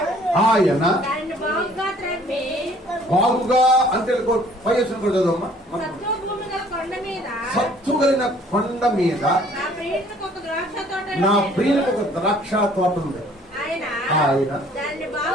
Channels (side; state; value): both; normal; correlation 0.57